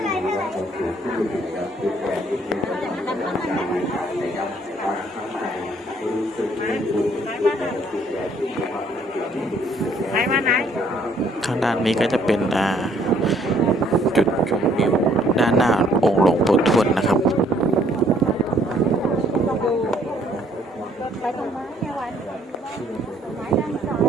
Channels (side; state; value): both; normal; correlation 0.63